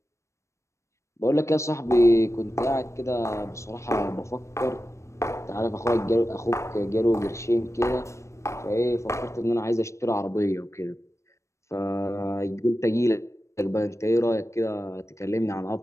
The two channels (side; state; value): right; late; 0.14 ms